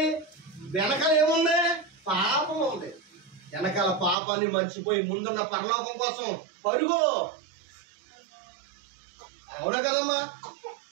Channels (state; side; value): drops out; left; at 4.2 s